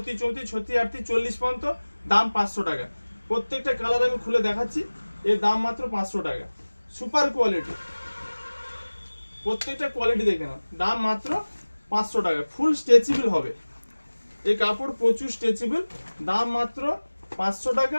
34, 36, 38, 40 পর্যন্ত, দাম 500 টাকা। প্রত্যেকটা কালার আমি খুলে দেখাচ্ছি, এর দাম মাত্র 500 টাকা। সুপার কোয়ালিটি, প্রত্যেকটা কোয়ালিটি দেখে নাও, দাম মাত্র 500 টাকা। ফুল স্ট্রেচেবল হবে এই কাপড়, প্রচুর স্ট্রেচেবল, দাম মাত্র 500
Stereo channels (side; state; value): both; inverted; correlation -1.00